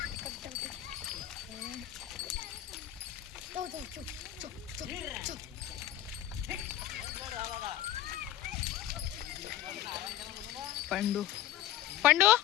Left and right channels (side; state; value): right; quieter; 12.6 dB